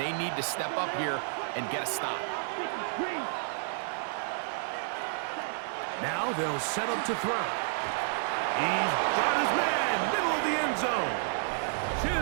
need to step up here and get a stop. Now they'll set up to throw. He's got his man, middle of the end zone.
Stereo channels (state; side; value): silent; left; 57 dB below the other